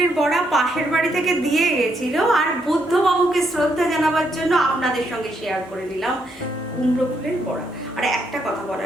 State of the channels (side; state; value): both; normal; correlation 0.76